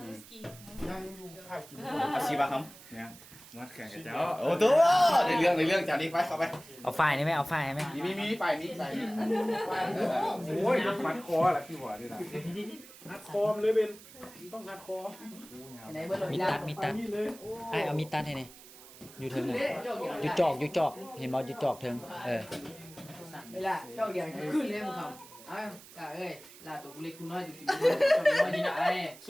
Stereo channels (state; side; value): noise; right; hiss, 19 dB below the sound